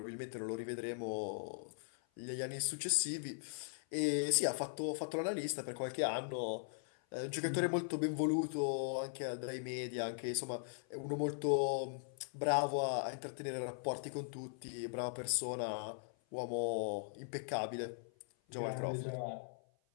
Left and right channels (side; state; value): right; silent; 51 dB below the other